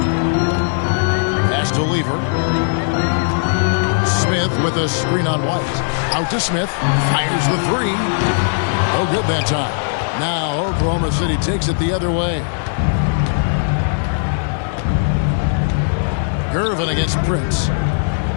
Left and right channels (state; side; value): silent; right; digital silence